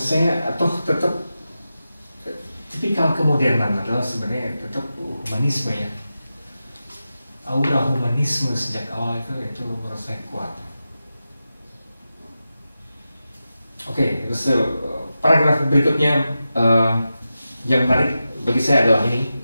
atau tetap tipikal kemodernan adalah sebenarnya tetap humanisme ya. Aura humanisme sejak awal itu menurut saya kuat. Oke, terus paragraf berikutnya yang menarik bagi saya adalah ini.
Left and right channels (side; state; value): both; inverted; correlation -0.92